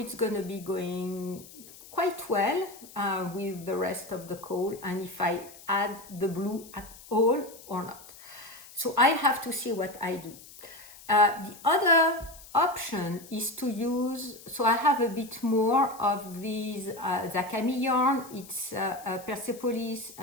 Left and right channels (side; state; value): left; noise; hiss, 19 dB below the sound